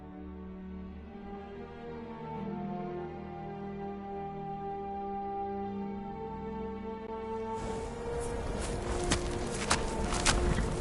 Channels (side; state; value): both; identical; correlation 1.00